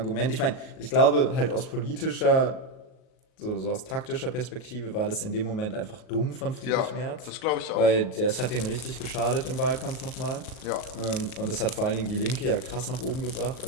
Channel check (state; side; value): late; right; 38 ms